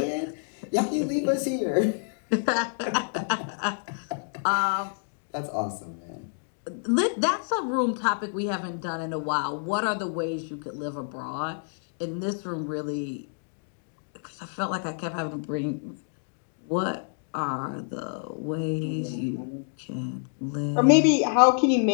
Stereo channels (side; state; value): right; silent; digital silence